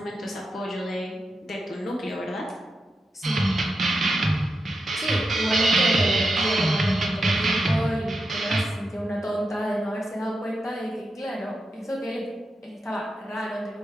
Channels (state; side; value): normal; both; correlation 0.88